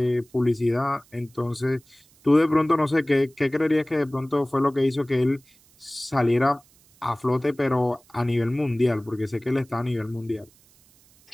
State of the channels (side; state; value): right; noise; hiss, 30 dB below the sound